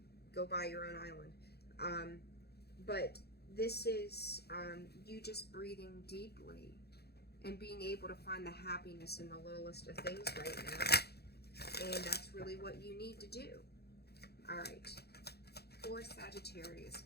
Go buy your own island. But this is you just breathing deeply and being able to find the happiness in the littlest of things right now. And that's really what you need to do. All right. For Sagittarius,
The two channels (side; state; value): right; late; 0.47 ms